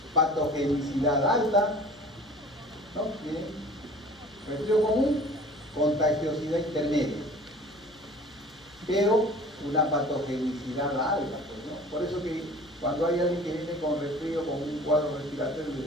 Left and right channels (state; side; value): noise; left; hum, 29 dB below the sound